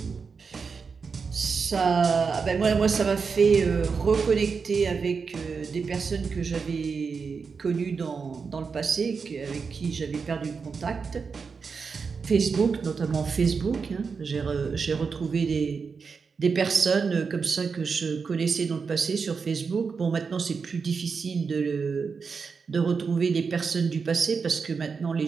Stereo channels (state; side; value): quieter; left; 5.3 dB